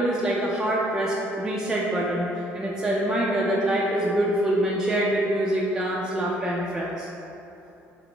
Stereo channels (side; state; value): both; normal; correlation 0.65